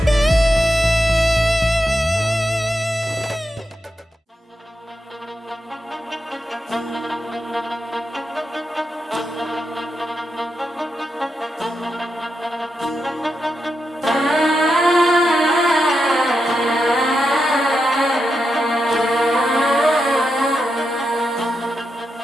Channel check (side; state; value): both; normal; correlation 0.86